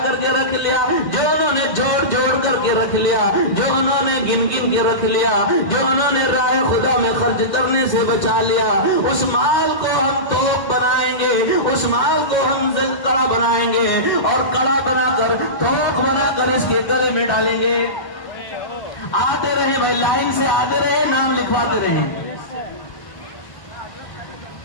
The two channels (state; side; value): late; right; 1.7 ms